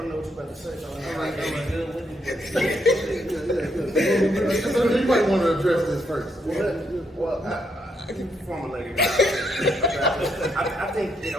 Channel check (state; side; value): normal; both; correlation 0.76